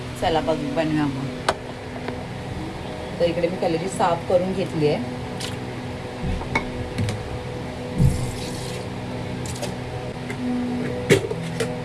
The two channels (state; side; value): identical; both; correlation 1.00